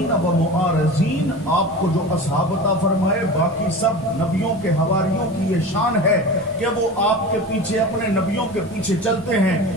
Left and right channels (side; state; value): both; normal; correlation 0.32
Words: وَمُعَارِضِينَ، آپ کو جو اصحاب عطا فرمائے باقی سب نبیوں کے حواریوں کی یہ شان ہے کہ وہ آپ کے پیچھے اپنے نبیوں کے پیچھے چلتے ہیں،